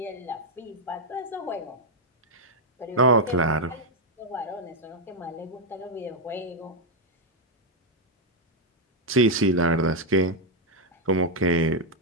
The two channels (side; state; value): both; normal; correlation 0.00